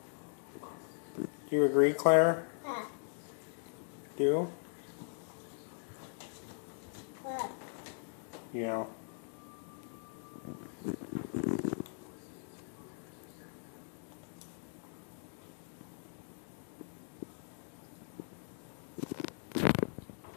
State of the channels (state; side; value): silent; right; 52 dB below the other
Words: Do you agree, Claire? Do? Yeah.